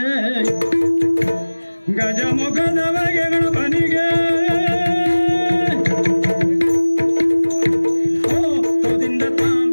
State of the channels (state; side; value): inverted; both; correlation -1.00